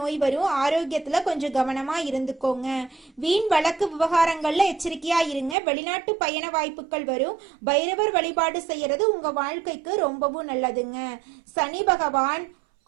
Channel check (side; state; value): left; drops out; at 5.6 s